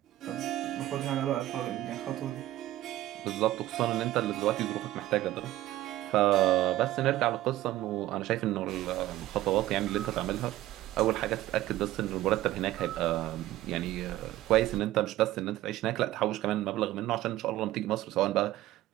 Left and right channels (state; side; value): quieter; left; 15.2 dB